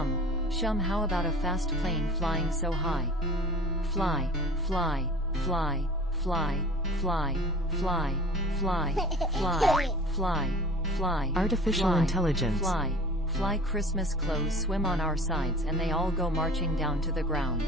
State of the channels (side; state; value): both; normal; correlation 0.42